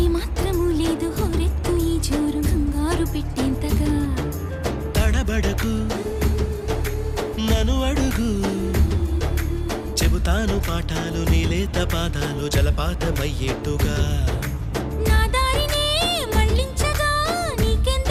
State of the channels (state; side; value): identical; both; correlation 1.00